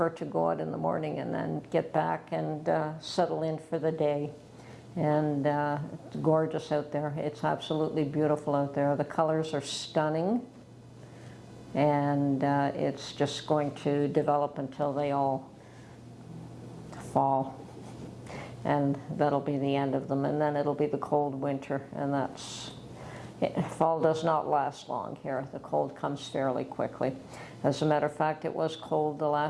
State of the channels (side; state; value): both; identical; correlation 1.00